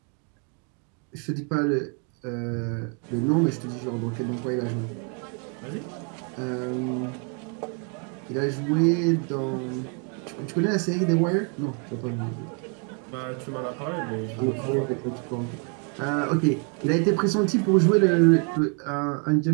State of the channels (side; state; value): left; quieter; 38.0 dB